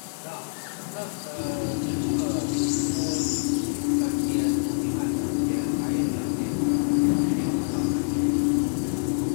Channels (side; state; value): right; silent; digital silence